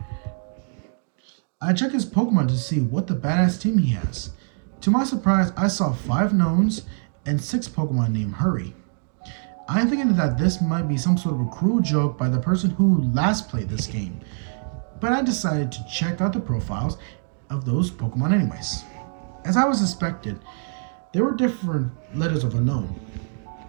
I checked his Pokemon to see what the badass team he has. To my surprise, I saw 5 knowns and 6 Pokemon named Hurry. I'm thinking that this might be some sort of a cruel joke by the person who last played this game, but I decided to check out the profiles of those Pokemon anyways. As I was expected, there were different letters of unknown,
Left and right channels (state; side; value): silent; left; 63 dB below the other